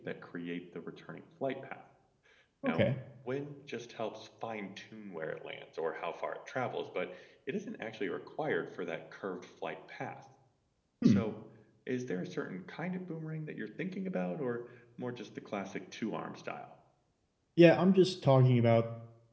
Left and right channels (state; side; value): identical; both; correlation 1.00